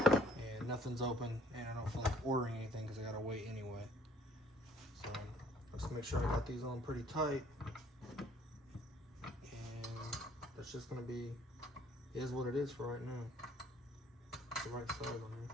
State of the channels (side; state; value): both; normal; correlation 0.59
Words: nothing's open, and I don't feel like ordering anything because I gotta wait anyway. So let's make sure I got these on pretty tight. It's just gonna be, is what it is for right now. It's the right size on here.